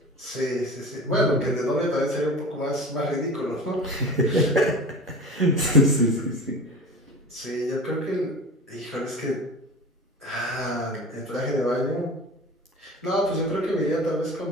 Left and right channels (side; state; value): both; normal; correlation 0.35